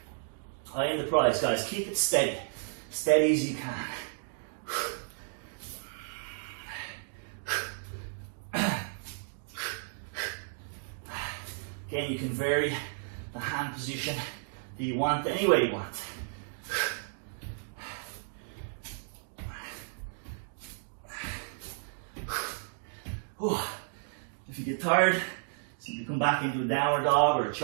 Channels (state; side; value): silent; left; digital silence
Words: I am the prize, guys. Keep it steady. Steady as you can. Again, you can vary the hand position that you want any way you want. If you get tired, simply come back into a downward dog or a